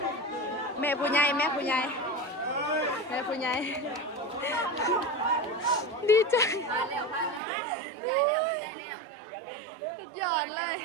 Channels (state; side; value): drops out; left; at 7.4 s